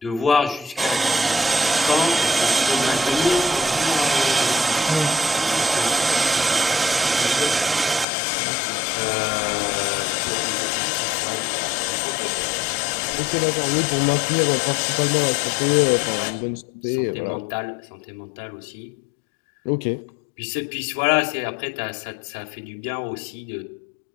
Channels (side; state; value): right; drops out; at 8.1 s